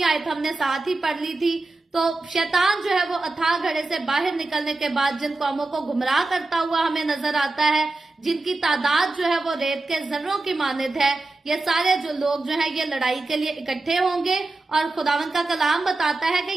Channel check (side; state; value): left; quieter; 3.2 dB